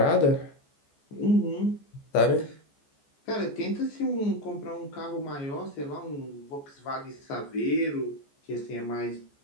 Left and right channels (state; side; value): late; right; 14 ms